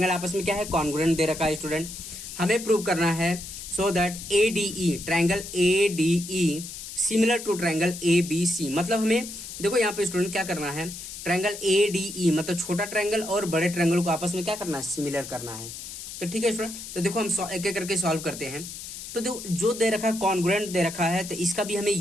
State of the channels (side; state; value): left; noise; hiss, 10 dB below the sound